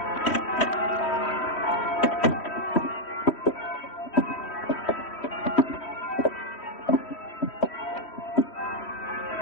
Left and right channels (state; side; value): late; right; 3.1 ms